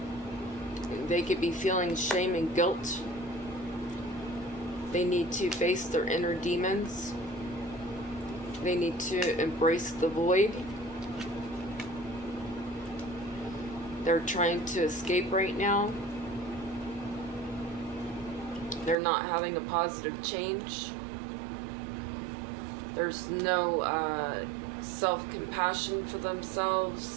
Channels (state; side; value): drops out; left; at 18.9 s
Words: They could be feeling shame and guilt. They need to face their inner demons. They need to embrace the void. They're trying to escape right now. They're not having a positive change. There's no self-compassion for